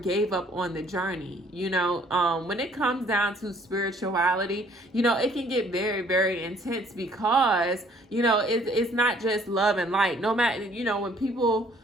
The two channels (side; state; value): both; normal; correlation 0.60